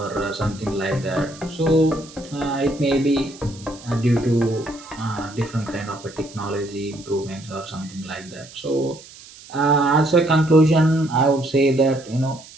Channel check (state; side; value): noise; right; hiss, 20 dB below the sound